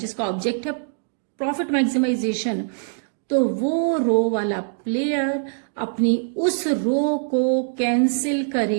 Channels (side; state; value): left; silent; digital silence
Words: ऑब्जेक्ट है प्रॉफिट मैक्सिमाइजेशन, तो वो रो वाला प्लेयर अपनी उस रो को कैंसिल